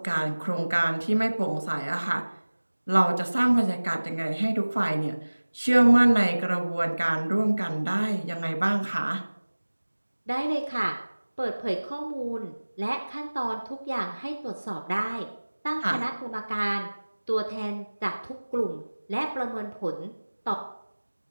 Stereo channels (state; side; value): inverted; both; correlation -1.00